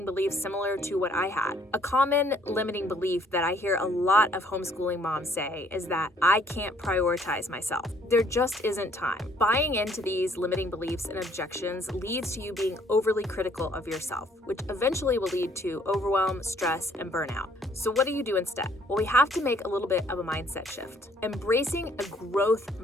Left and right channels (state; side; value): normal; both; correlation 0.63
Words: beliefs similar to what I had. A common limiting belief that I hear a lot of homeschooling moms say is that I can't prioritize myself. There just isn't time. Buying into these limiting beliefs and objections leads to you being overly critical of yourself, which eventually will lead to overwhelm, stress, and burnout. So what do you do instead? Well, we have to make a little bit of a mindset shift. Embracing a growth